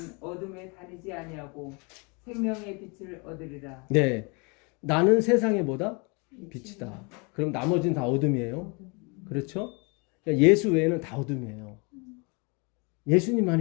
어둠에 다니지 아니하고 생명의 빛을 얻으리라. 네, 나는 세상의 뭐다? 빛이다. 그럼 나머지는 다 어둠이에요. 그렇죠? 그러니까 예수 외에는 다 어둠이에요.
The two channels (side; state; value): right; quieter; 31.4 dB